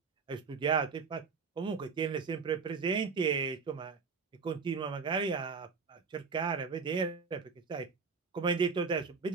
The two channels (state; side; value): quieter; left; 5.3 dB